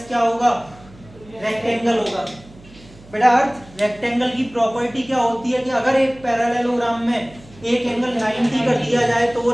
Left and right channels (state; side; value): noise; right; hum, 23 dB below the sound